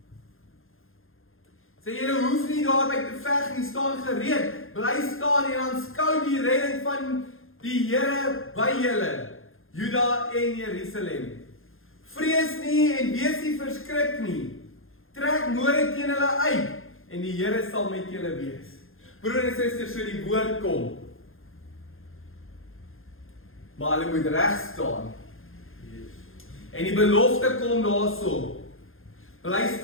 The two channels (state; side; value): late; right; 0.60 ms